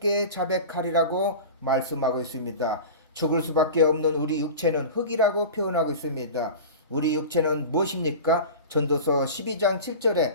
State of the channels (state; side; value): inverted; both; correlation -0.32